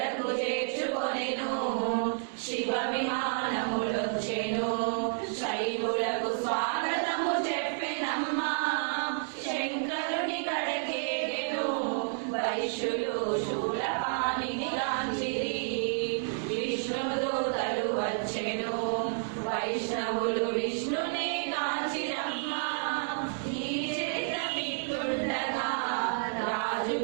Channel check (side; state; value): left; silent; digital silence